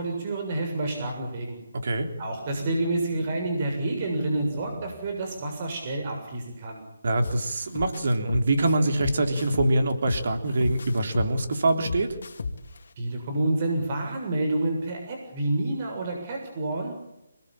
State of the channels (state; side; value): inverted; both; correlation -0.85